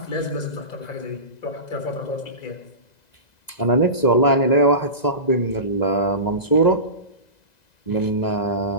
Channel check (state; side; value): late; right; 2.0 ms